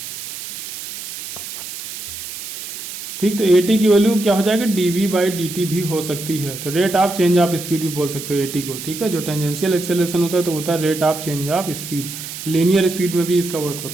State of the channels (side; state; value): right; noise; hiss, 9 dB below the sound